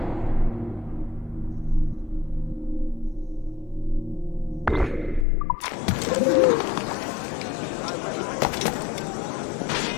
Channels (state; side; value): drops out; right; at 5.2 s